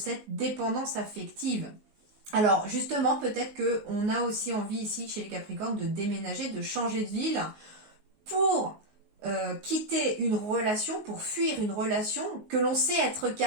dépendance affective. Alors justement, peut-être qu'on a aussi envie ici chez les Capricornes de déménager, de changer de ville pour quitter une relation, pour fuir une relation que l'on sait être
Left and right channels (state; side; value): late; left; 19 ms